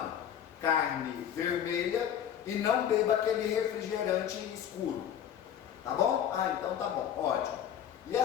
carne vermelha e não beba aquele refrigerante escuro, tá bom? Ah, então tá bom, ótimo. E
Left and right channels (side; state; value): right; quieter; 9.6 dB